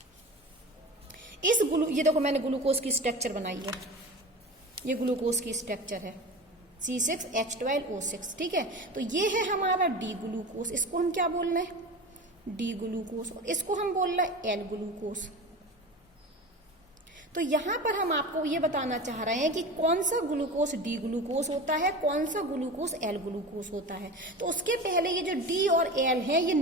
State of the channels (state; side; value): normal; both; correlation 0.31